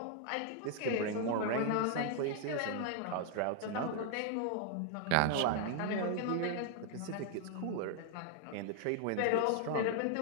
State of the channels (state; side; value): different; both; correlation 0.00